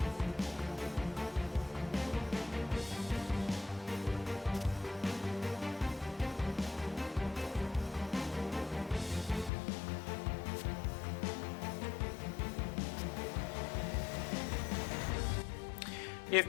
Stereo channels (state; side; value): drops out; right; at 9.5 s